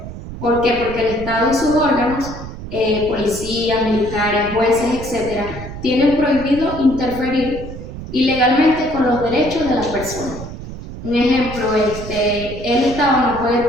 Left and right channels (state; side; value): noise; right; rumble, 10 dB below the sound